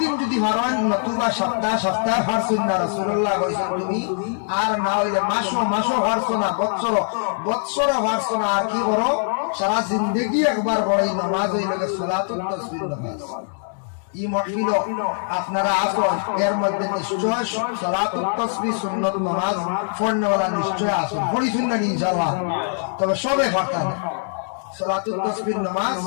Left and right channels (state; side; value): silent; right; 64 dB below the other